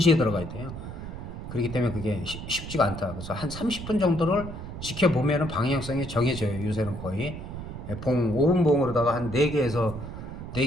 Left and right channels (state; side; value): noise; right; rumble, 9 dB below the sound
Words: 들어가야 돼요. 그렇기 때문에 그게 쉽지가 않다. 그래서 한 30분 정도를 지켜보면 방향성이 정해져요. 요새는 거의 봉 5분 봉으로다가 한 4개에서